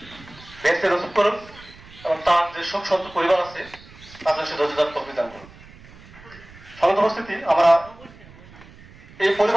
বেহেশতে নসিব করুন এবং তার যে শোক সন্ত পরিবার আছে তাদের সে ধৈর্যধার তৌফিক দান করুন। সম্মানিত উপস্থিতি, আমরা এই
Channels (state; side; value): noise; right; rumble, 21 dB below the sound